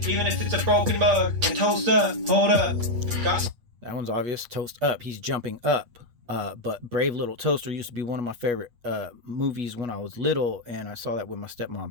even if it's a broken mug, and toast up, hold up. That one's obvious. Toast up. He's jumping up. But Brave Little Toaster used to be one of my favorite movies when I was little, and I saw that with my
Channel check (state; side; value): late; left; 8.3 ms